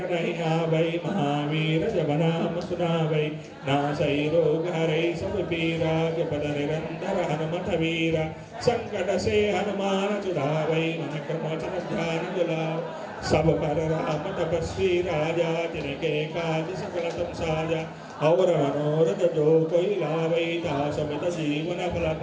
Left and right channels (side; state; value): both; identical; correlation 1.00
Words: नहीं आवै महावीर जब नाम सुनावै नासै रोग हरै सब पीरा जपत निरंतर हनुमत वीरा संकट से हनुमान छुड़ावै मन क्रम वचन ध्यान दिलाओ सब पर राम तपस्वी राजा तिनके काज सकल तुम साजा और मनोरथ जो कोई लावै दासमित जीवन फल